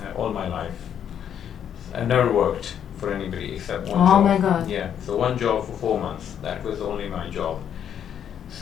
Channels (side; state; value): right; quieter; 9.0 dB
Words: all my life. I've never worked for anybody except one job. Oh my God. Yeah, so one job for 4 months. That was only my job.